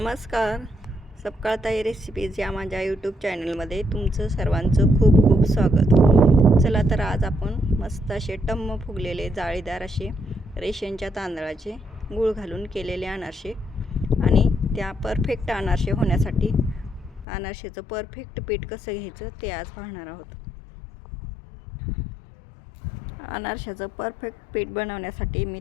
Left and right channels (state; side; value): drops out; right; at 17.2 s